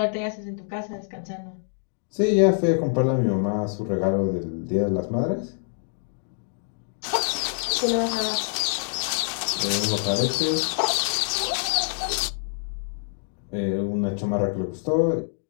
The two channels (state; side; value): silent; right; digital silence